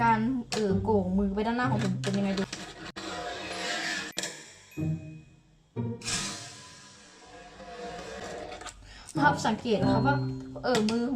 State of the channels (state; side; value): identical; both; correlation 1.00